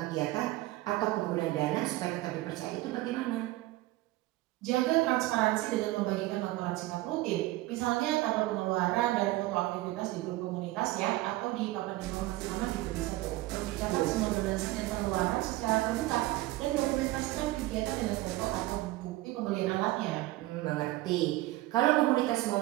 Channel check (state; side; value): quieter; left; 18.2 dB